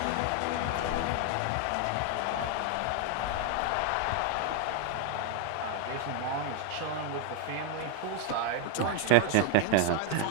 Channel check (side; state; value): both; different; correlation 0.01